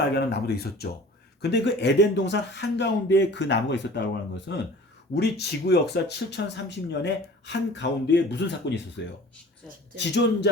알게 하는 나무도 있었죠. 근데 그 에덴 동산 한가운데에 그 나무가 있었다고 하는 것은 우리 지구 역사 7030년의 한가운데에 무슨 사건이 있었어요?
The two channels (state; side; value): normal; both; correlation 0.44